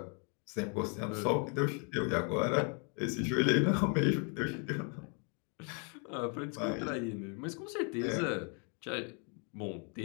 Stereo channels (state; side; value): quieter; right; 37.2 dB